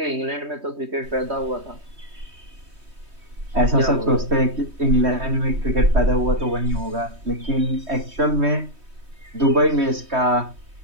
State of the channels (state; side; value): late; left; 3.2 ms